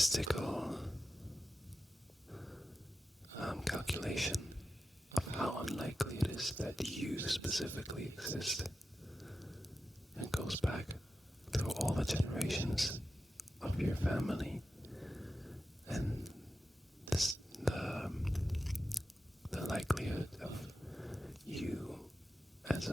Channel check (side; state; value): both; normal; correlation 0.92